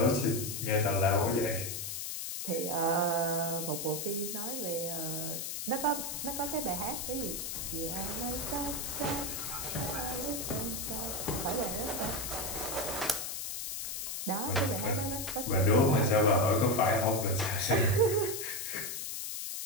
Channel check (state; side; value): noise; left; hiss, 4 dB below the sound